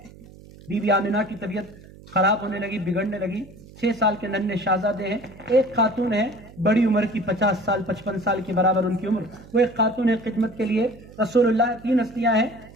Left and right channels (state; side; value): noise; right; hum, 20 dB below the sound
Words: بی بی آمنہ کی طبیعت خراب ہونے لگی، بگڑنے لگی، 6 سال کے ننھے شہزادے ہیں، ایک خاتون ہے بڑی عمر کی، 50 سال 55 سال کے برابر ان کی عمر، وہ ایک خاتون ہے خدمت کے لیے رسول اللہ، 3 ہستیاں ہیں۔